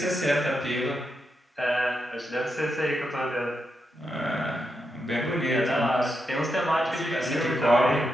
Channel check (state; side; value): normal; both; correlation 0.84